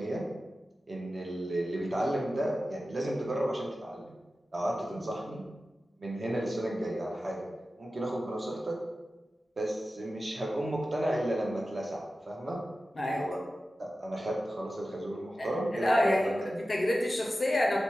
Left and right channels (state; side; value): normal; both; correlation 0.94